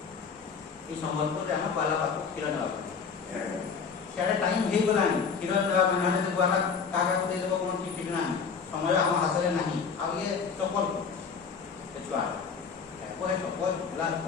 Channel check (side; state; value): right; quieter; 5.8 dB